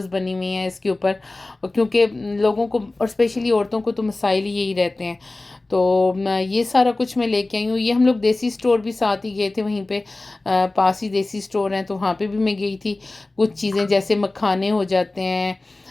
बनी हुई हैं इसके ऊपर, क्योंकि लोगों को और स्पेशली औरतों को तो मसाइल ही यही रहते हैं। तो ये सारा कुछ मैं लेके आई हूँ। ये हम लोग देसी स्टोर भी साथ ही गए थे, वहीं पे पास ही देसी स्टोर हैं, तो वहाँ पे भी मैं गई थी। कुछ चीज़ें जैसे मखाने हो जाते हैं,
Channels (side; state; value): right; quieter; 3.0 dB